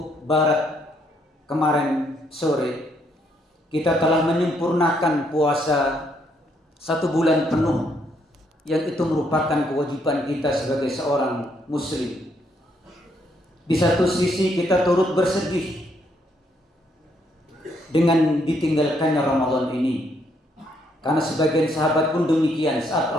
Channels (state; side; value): normal; both; correlation 0.72